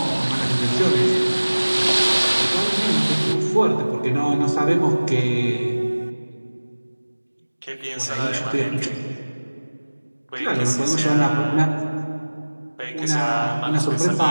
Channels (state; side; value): inverted; both; correlation -1.00